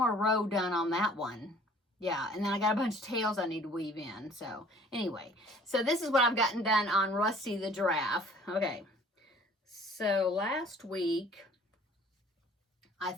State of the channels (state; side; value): normal; both; correlation 0.53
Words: row done on that one. yeah, and then I got a bunch of tails I need to weave in. So anyway, so this is what I've gotten done on Rusty the Giraffe. Okay, so last week, I